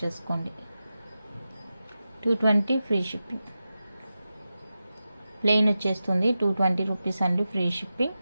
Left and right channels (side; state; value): both; inverted; correlation -0.92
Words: చేసుకోండి. 220 ఫ్రీ షిప్పింగ్. ప్లెయిన్ వచ్చేస్తుంది 220 రూపీస్ అండి, ఫ్రీ షిప్పింగ్.